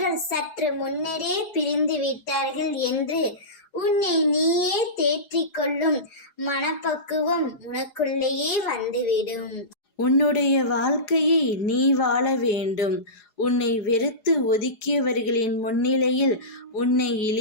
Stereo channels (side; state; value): right; late; 4.8 ms